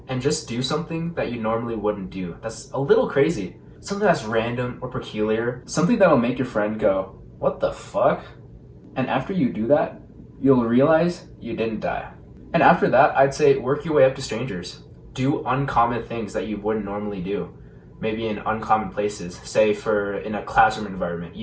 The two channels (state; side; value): identical; both; correlation 1.00